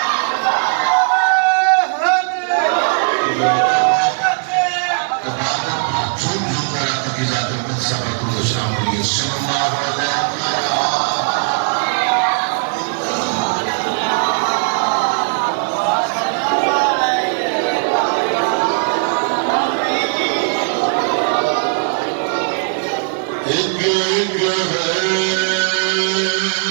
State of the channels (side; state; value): left; silent; digital silence